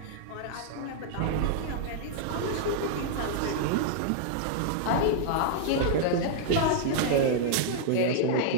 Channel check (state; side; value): different; both; correlation -0.01